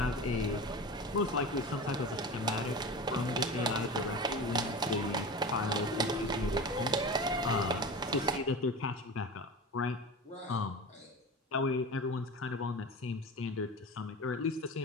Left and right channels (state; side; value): normal; both; correlation 0.31